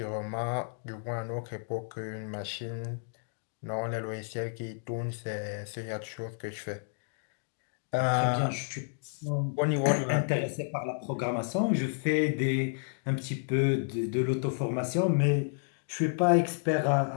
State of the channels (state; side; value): silent; right; digital silence